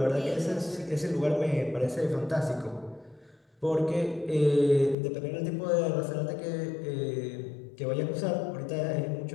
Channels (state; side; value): drops out; right; at 5.0 s